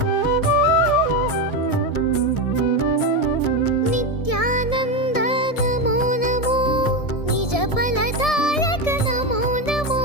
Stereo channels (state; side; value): late; right; 1.7 ms